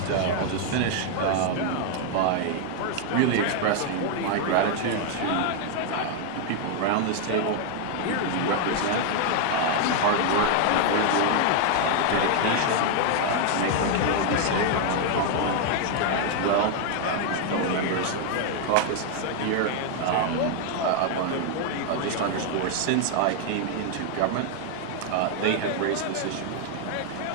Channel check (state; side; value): different; both; correlation 0.00